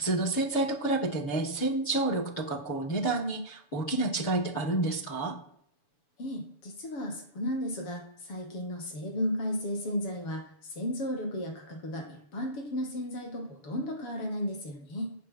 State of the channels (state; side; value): late; right; 7.0 ms